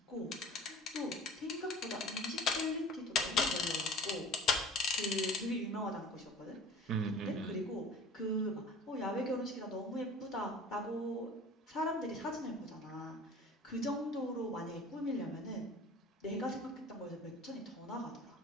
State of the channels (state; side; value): normal; both; correlation 0.43